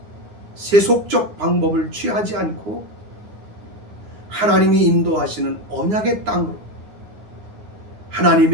세속적 방법을 취하지 않고 하나님이 인도하시는 언약의 땅으로,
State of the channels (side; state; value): left; late; 9.7 ms